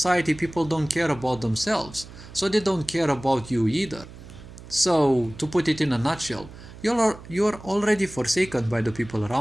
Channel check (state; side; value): noise; right; hum, 17 dB below the sound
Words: people don't care about themselves, so they don't care about you either. So, to put it in a nutshell, you're already forsaken by the people